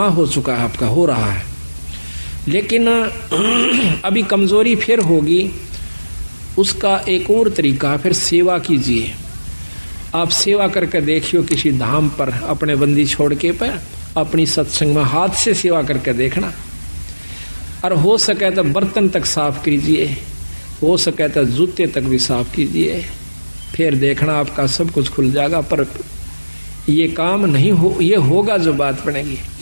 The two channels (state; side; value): inverted; both; correlation -1.00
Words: हो चुका है, आपका हो रहा है, लेकिन अभी कमजोरी फिर होगी। उसका एक और तरीका, फिर सेवा कीजिए। आप सेवा करके देखियो किसी धाम पर अपने बंदी छोड़ के पर अपनी सत्संग में हाथ से सेवा करके देखना, और हो सके तो बर्तन तक साफ कीजिए, हो सके तो जूते तक भी साफ कीजिए, फिर देखना आपका सब कुछ खुल जाएगा। पर ये काम नहीं हो, ये होगा जो बात बनेगी।